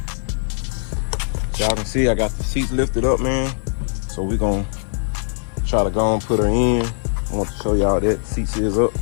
y'all can see I got the seats lifted up, man. So we're gonna try to go and put her in. I want to show y'all that the seats is up.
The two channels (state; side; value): silent; right; digital silence